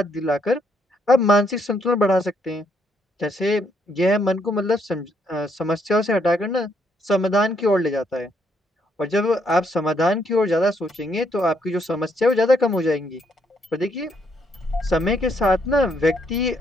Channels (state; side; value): normal; both; correlation 0.73